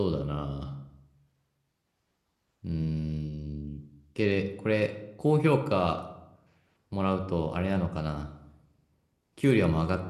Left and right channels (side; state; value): both; identical; correlation 1.00